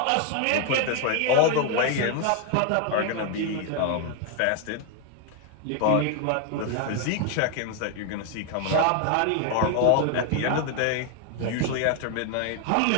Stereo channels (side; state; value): both; different; correlation 0.01